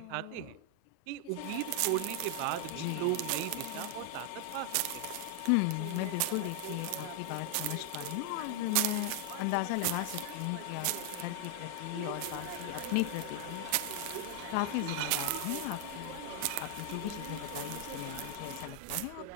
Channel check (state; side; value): different; both; correlation 0.00